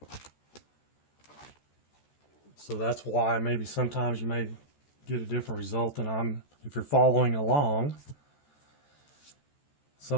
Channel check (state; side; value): late; right; 14 ms